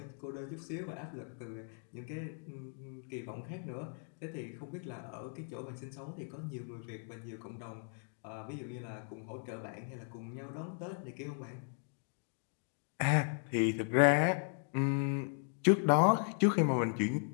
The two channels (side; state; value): right; silent; 53 dB below the other